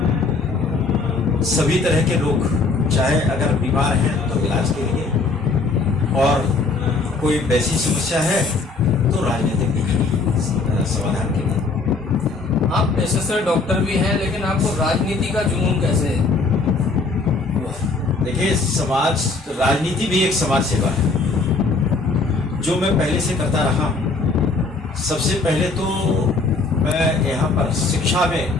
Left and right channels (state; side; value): quieter; right; 3.8 dB